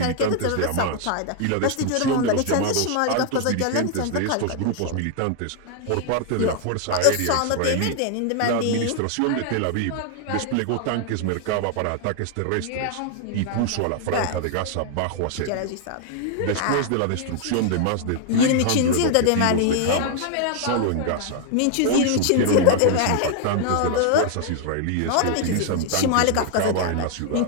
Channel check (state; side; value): different; both; correlation 0.00